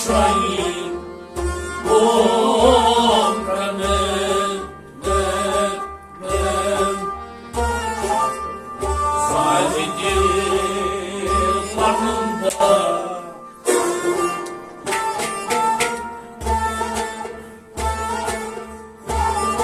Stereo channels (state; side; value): identical; both; correlation 1.00